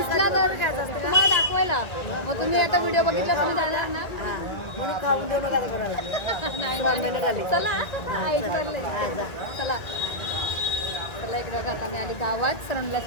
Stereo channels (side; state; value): right; late; 1.9 ms